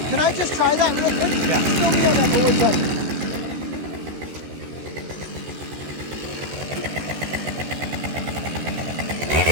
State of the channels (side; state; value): left; late; 14 ms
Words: Can I just try that real quick? Yeah. Go inside.